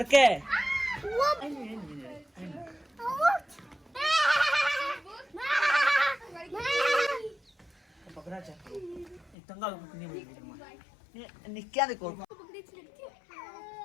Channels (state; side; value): drops out; right; at 9.3 s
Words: है। पकड़ा चाहिए तंगा निक्या देखो।